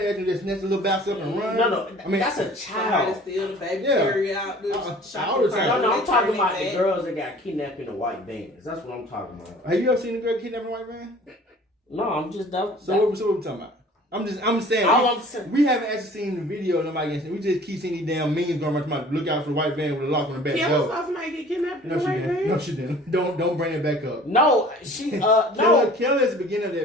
and just snatch a little bounce up and run. No, I mean that's a Somebody child. steal the baby Yeah. carry out the All shopping the time. cart. No, I'm They talking turn about it the back. girls that got kidnapped in the white vans. That's what I'm talking about. Have you ever seen a girl kidnapped in a white van? No, I'm just that. So what we talking about? I'm saying. All I'm saying. We haven't actually seen the video. Nobody gets. We just keep seeing these damn memes going around. About look out for the white van with a lock on the back Kim door. saw somebody get kidnapped in No, the she white didn't. van? No, she didn't. Don't bring it back up. No, she no. Kelly is the beginning of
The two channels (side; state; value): both; normal; correlation 0.48